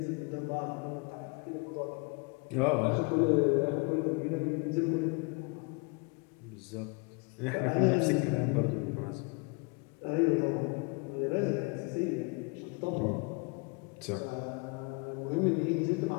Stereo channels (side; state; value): right; quieter; 31.0 dB